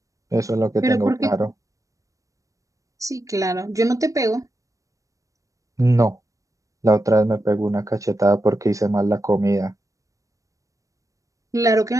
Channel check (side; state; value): left; late; 0.16 ms